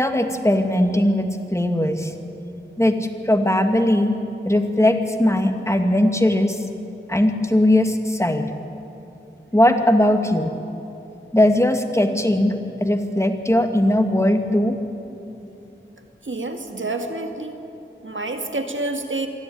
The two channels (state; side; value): normal; both; correlation 0.84